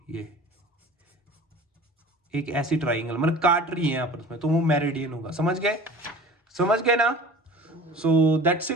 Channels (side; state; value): both; normal; correlation 0.41